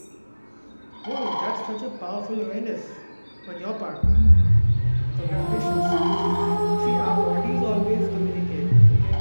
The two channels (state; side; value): inverted; both; correlation -1.00